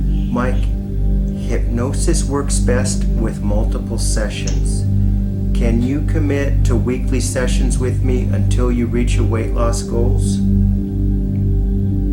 Mike, hypnosis works best with multiple sessions. Can you commit to weekly sessions with me until you reach your weight loss goals?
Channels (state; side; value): identical; both; correlation 1.00